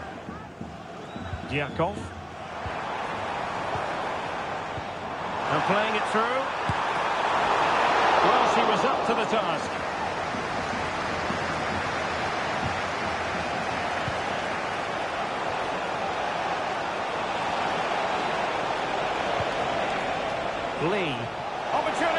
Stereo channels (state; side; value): identical; both; correlation 1.00